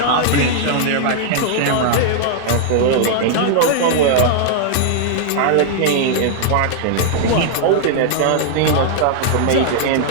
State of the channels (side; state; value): both; different; correlation -0.01